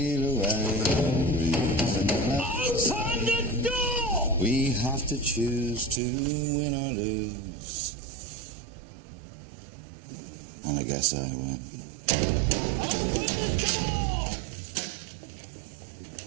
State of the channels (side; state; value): left; drops out; at 6.0 s